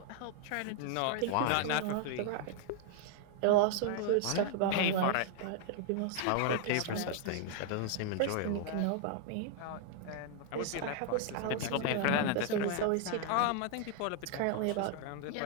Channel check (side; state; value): both; different; correlation 0.00